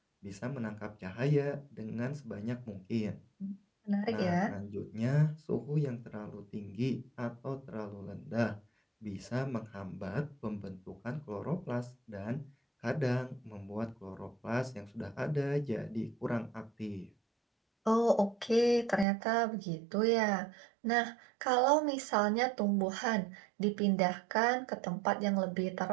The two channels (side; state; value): left; drops out; at 19.1 s